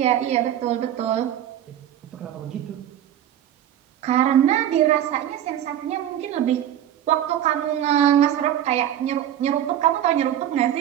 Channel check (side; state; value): left; quieter; 11.2 dB